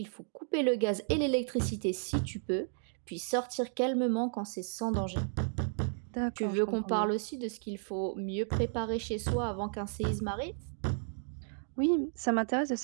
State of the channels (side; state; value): left; silent; digital silence